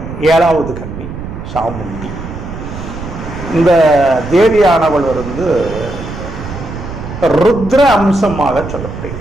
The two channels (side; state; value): right; noise; rumble, 9 dB below the sound